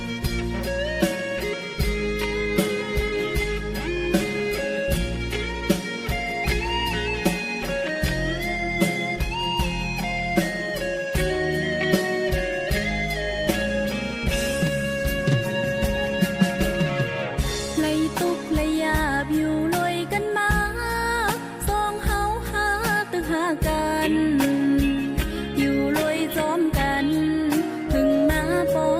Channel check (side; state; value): both; identical; correlation 1.00